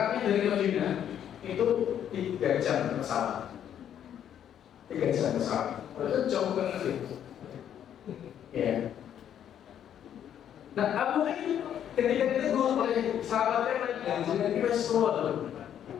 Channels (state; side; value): quieter; right; 9.8 dB